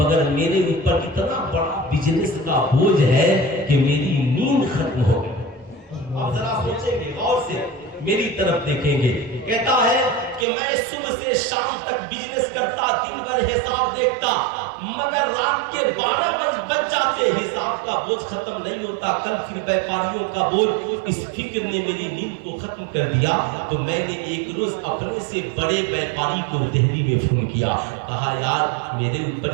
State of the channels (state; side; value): drops out; left; at 10.5 s